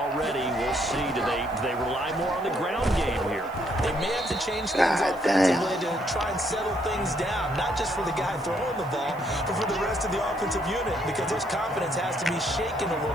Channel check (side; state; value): right; noise; hiss, 26 dB below the sound